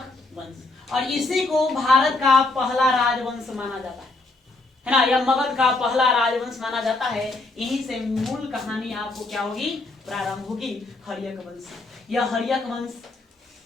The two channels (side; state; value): right; quieter; 3.2 dB